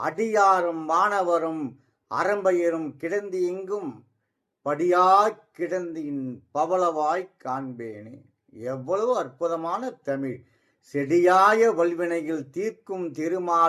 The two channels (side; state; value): both; identical; correlation 1.00